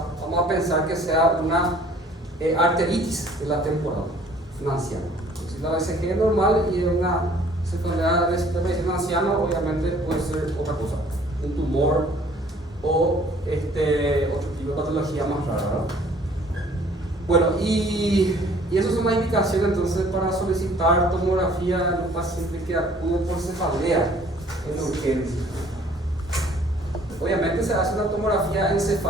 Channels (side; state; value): both; normal; correlation 0.56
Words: vamos a pensar que sea una arteritis de la temporal, un anciano. Si la BCG es normal y es una cefalea de aparición en anciano, obviamente puede ser otra cosa, un tumor o otro tipo de patología más rara, ¿verdad? Bueno, y esas son las indicaciones entonces para solicitar tomografía en un paciente que acude por cefalea en urgencia. Obviamente se hace una tomografía